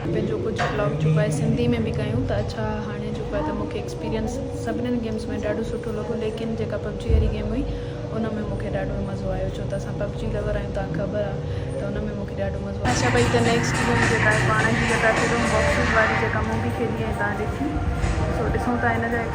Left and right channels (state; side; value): identical; both; correlation 1.00